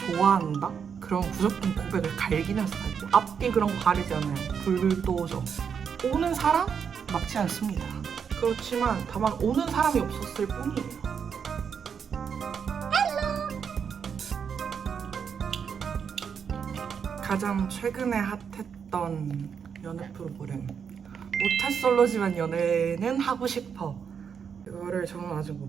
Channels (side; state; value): left; quieter; 7.0 dB